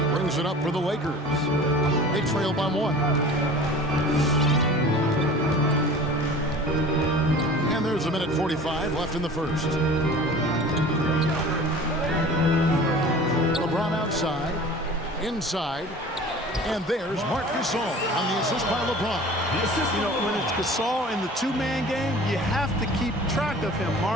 brings it up for the Lakers. They trail by 1. And there's a minute 45 left in the first. LeBron outside. Inside. And there's Marc Gasol on the assist by LeBron. You know, when it's Gasol in the two-man game, you have to keep track of him.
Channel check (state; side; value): normal; both; correlation 0.41